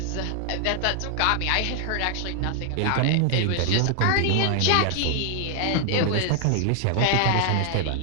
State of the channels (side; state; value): both; different; correlation 0.00